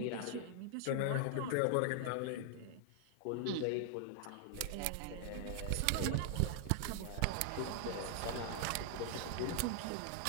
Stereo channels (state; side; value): different; both; correlation 0.00